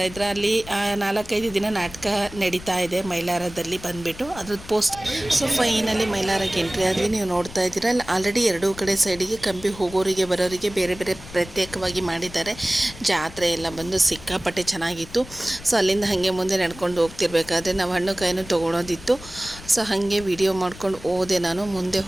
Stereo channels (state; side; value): noise; left; rumble, 17 dB below the sound